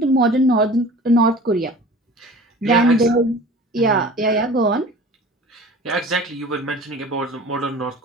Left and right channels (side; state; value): both; normal; correlation 0.42